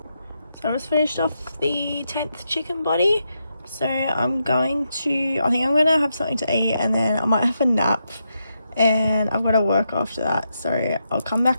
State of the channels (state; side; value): inverted; both; correlation -0.84